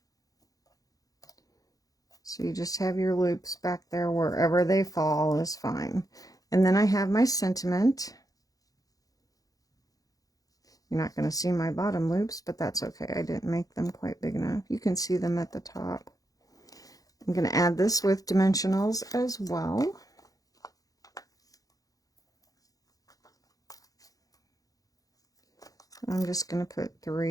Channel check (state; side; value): late; right; 0.17 ms